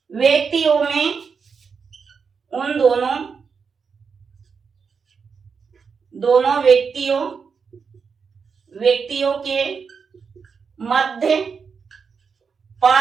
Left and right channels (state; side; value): quieter; left; 5.8 dB